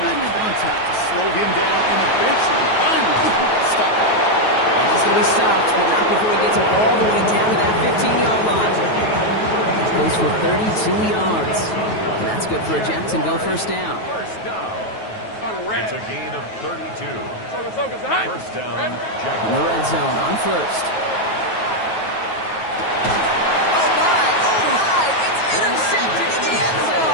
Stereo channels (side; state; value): right; late; 9.3 ms